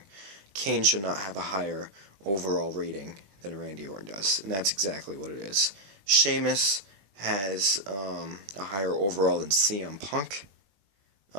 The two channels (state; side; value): late; left; 20 ms